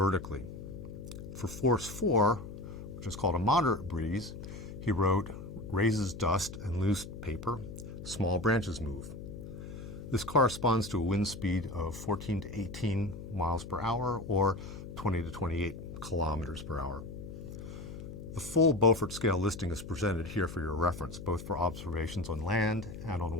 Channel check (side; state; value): left; noise; hum, 11 dB below the sound